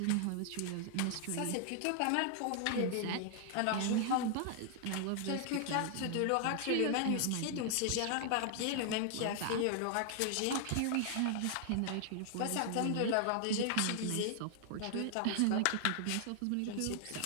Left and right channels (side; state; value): both; different; correlation 0.00